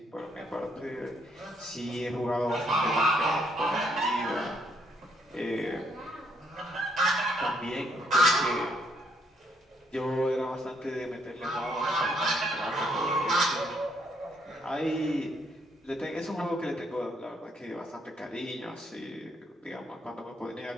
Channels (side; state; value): both; normal; correlation 0.72